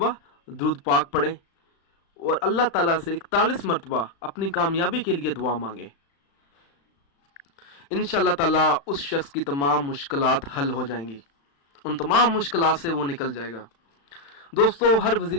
दुरूद पाक पढ़े, और अल्लाह ताला से 41 मरतबा अपनी कामयाबी के लिए दुआ मांगे। इंशाअल्लाह ताला उस शख्स की तमाम मुश्किलात हल हो जाएंगी, उन तमाम मुश्किलात से वो निकल जाएगा। दोस्तों, हर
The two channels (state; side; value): late; right; 36 ms